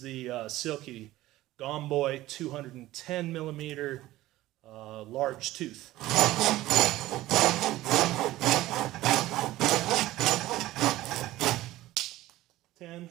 the Silky Gomboy 210 millimeter large tooth. 10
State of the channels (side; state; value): left; quieter; 16.4 dB